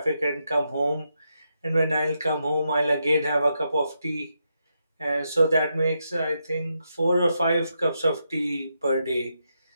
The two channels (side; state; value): both; inverted; correlation -0.83